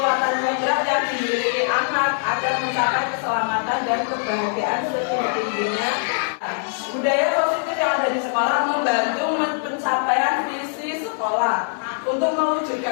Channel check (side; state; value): right; silent; 63 dB below the other